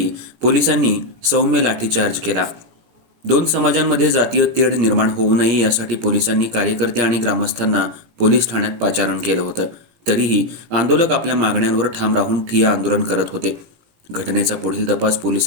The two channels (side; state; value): left; late; 17 ms